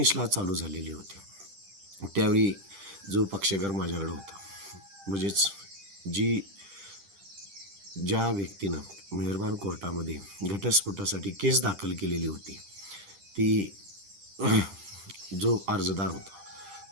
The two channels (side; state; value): left; late; 10 ms